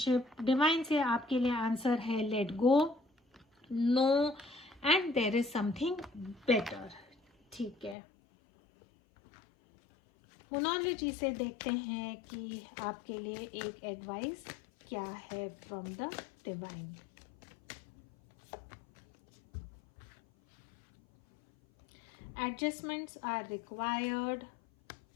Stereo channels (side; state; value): right; drops out; at 8.0 s